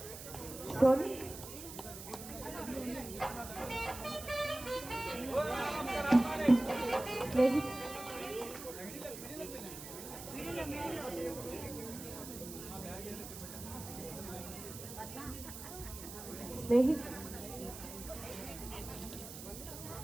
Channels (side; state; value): right; noise; hiss, 11 dB below the sound